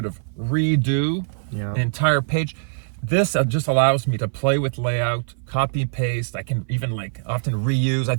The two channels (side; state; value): left; silent; 58 dB below the other